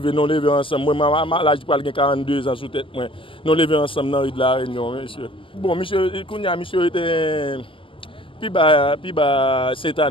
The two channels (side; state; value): right; late; 0.25 ms